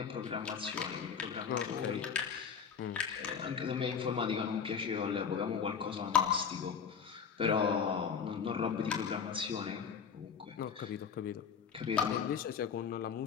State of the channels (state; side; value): quieter; right; 6.8 dB